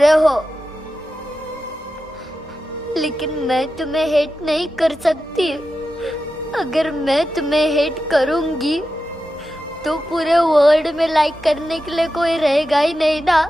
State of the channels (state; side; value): normal; both; correlation 0.91